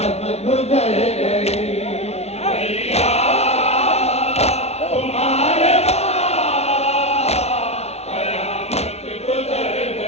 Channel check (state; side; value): late; right; 0.31 ms